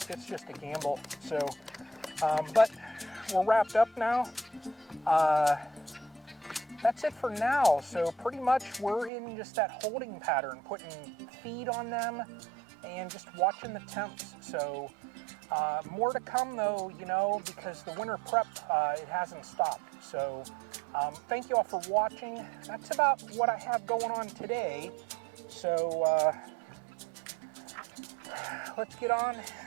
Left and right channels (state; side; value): drops out; left; at 9.1 s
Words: it's just a gamble. So, but we're wrapped up now. That's it for now. So pretty much we're in just that holding pattern, putting feed on them and just watching the temps. So more to come though, you know, because the winter prep, it hasn't stopped. So thank you all for watching. That's about what I have going on today. So let's get on